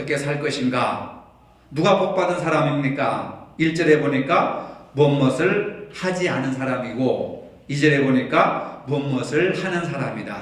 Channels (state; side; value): identical; both; correlation 1.00